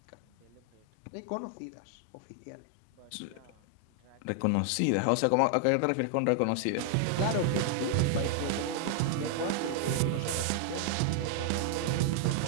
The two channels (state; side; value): different; both; correlation 0.00